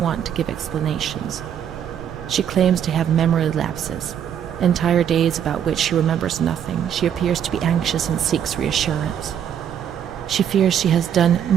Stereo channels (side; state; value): left; quieter; 9.1 dB